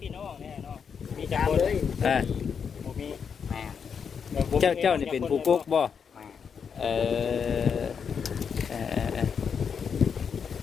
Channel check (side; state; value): right; quieter; 6.7 dB